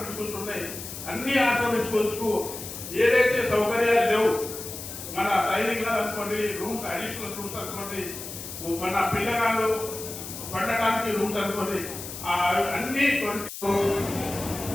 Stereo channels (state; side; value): noise; left; hiss, 10 dB below the sound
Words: స్కూల్స్ ఉన్నాయి, అన్ని ఆశ్రమ స్కూల్స్ కు ఏదైతే సౌకర్యాలు లేవు, మన డైనింగ్ హాల్ అనుకోండి, రూమ్స్ అడిషనల్ రూమ్స్ అనుకోండి, మన పిల్లగాళ్ళు పండటానికి రూమ్స్ అనుకోండి, అన్ని